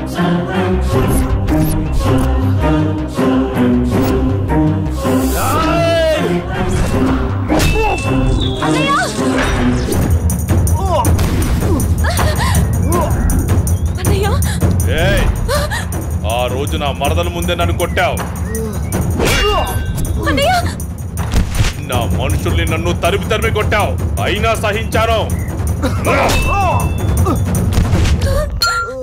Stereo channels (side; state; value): both; identical; correlation 1.00